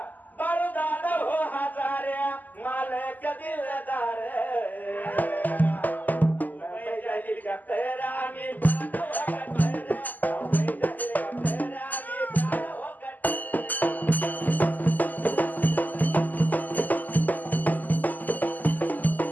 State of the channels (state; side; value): late; right; 0.083 ms